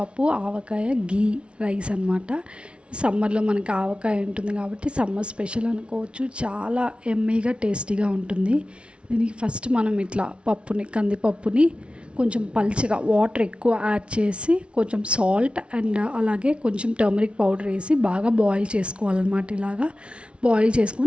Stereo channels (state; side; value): late; left; 0.059 ms